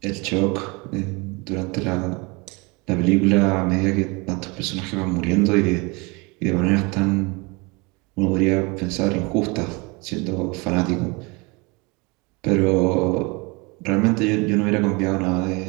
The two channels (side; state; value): left; quieter; 27.4 dB